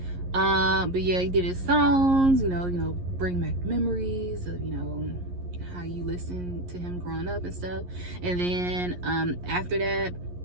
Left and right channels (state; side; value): late; left; 11 ms